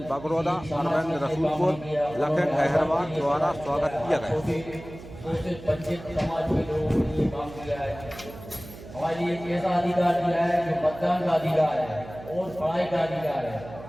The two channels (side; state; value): right; noise; hum, 15 dB below the sound